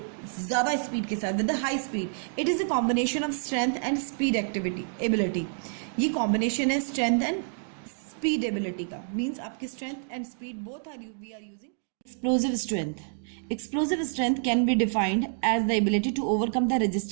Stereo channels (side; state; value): left; silent; digital silence